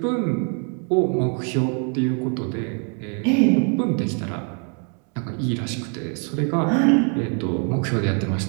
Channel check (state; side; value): quieter; left; 39.5 dB